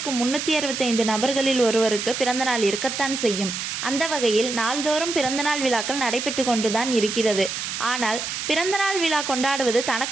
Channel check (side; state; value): right; noise; hiss, 5 dB below the sound